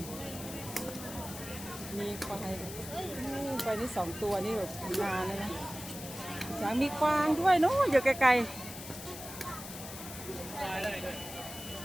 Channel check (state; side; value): noise; left; hiss, 11 dB below the sound